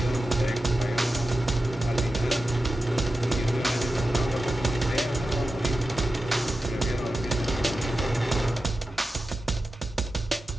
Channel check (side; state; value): both; normal; correlation 0.92